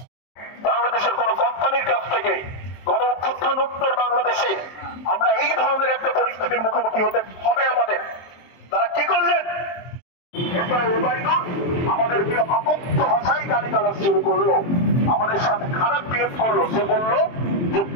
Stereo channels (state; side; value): late; right; 23 ms